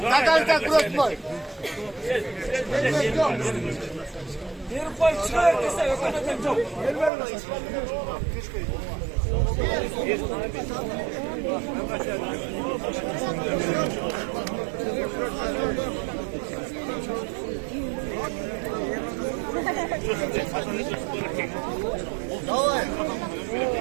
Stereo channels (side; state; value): left; drops out; at 7.1 s